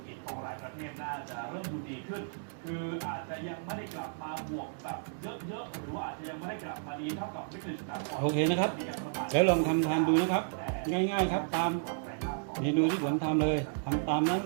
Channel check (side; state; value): left; silent; digital silence